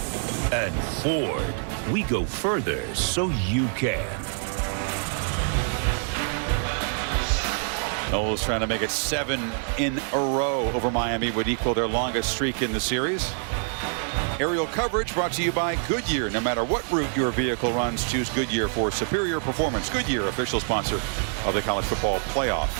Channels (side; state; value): left; silent; 59 dB below the other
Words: And Ford. We go further so you can. Knowles trying to make it 7 in a row over Miami, would equal their longest streak in the series. Aerial coverage brought to you by Goodyear. No matter what route your vehicle runs, choose Goodyear for superior performance. Goodyear, official sponsor of the college football playoff.